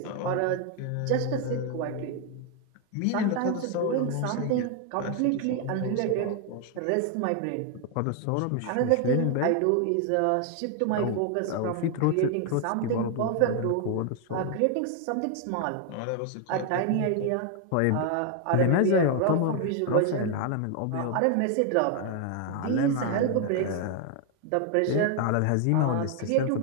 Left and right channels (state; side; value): different; both; correlation 0.00